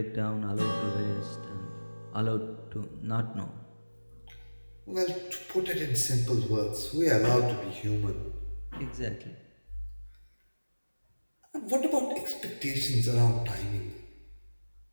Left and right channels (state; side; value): inverted; both; correlation -1.00